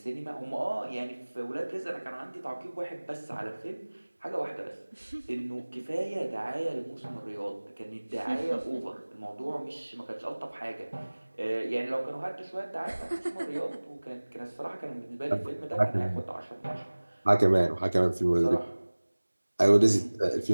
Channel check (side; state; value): both; inverted; correlation -1.00